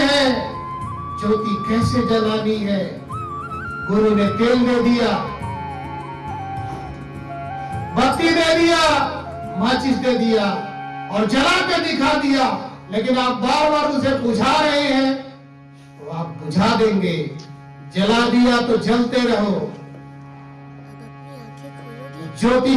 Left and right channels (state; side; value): identical; both; correlation 1.00